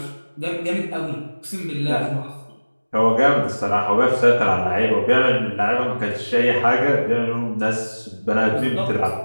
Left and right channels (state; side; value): inverted; both; correlation -1.00